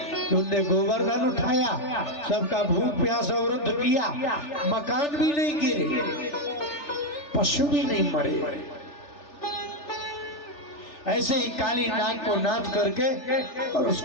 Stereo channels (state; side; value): late; right; 3.4 ms